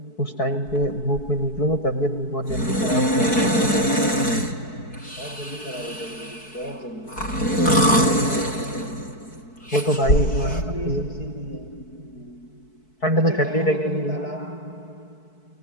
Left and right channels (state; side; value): late; right; 4.6 ms